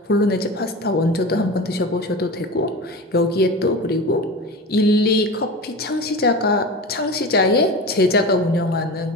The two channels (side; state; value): both; normal; correlation 0.29